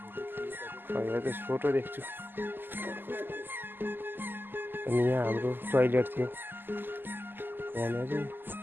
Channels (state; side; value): late; left; 0.094 ms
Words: अहिले त फोटो देख्छु। अनि यहाँ हाम्रो टोइलेट थियो, यहाँनिर